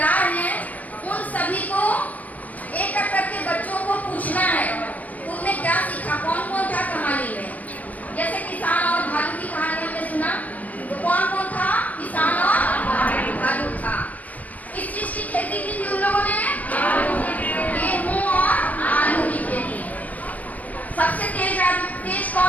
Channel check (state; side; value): late; right; 0.074 ms